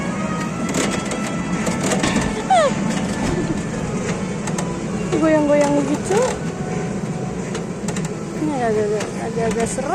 Goyang-goyang begitu. Ini agak-agak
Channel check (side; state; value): both; identical; correlation 1.00